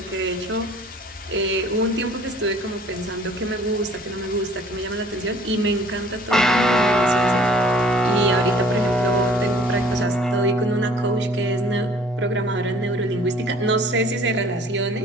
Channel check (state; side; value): normal; both; correlation 0.53